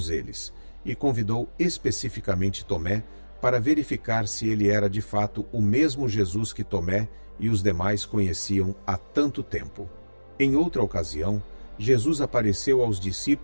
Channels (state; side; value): inverted; both; correlation -1.00